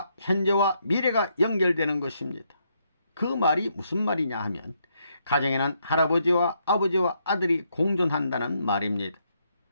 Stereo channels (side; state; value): both; inverted; correlation -0.76